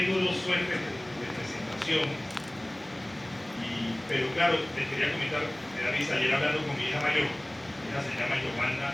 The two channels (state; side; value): noise; right; hum, 27 dB below the sound